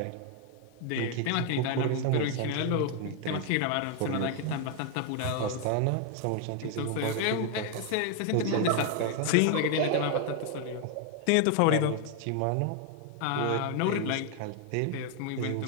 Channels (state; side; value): different; both; correlation 0.01